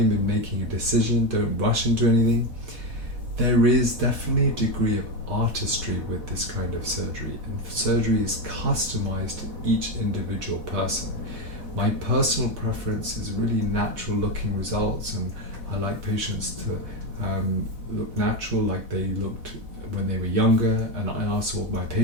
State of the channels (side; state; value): left; late; 4.1 ms